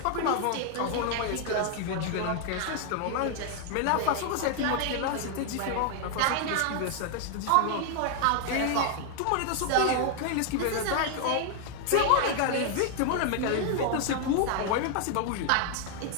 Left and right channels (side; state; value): both; different; correlation 0.00